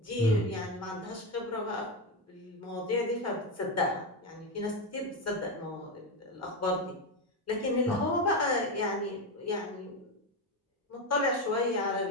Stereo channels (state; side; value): normal; both; correlation 0.12